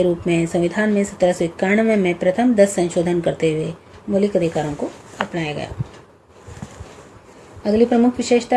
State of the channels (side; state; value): both; identical; correlation 1.00